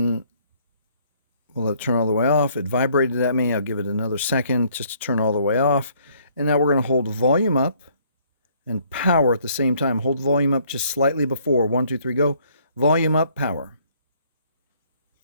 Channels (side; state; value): both; inverted; correlation -0.64